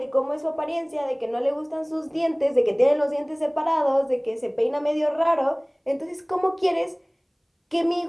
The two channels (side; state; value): both; identical; correlation 1.00